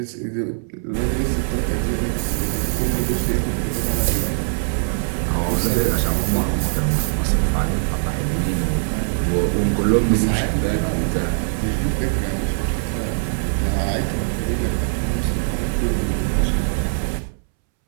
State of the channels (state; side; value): silent; left; 65 dB below the other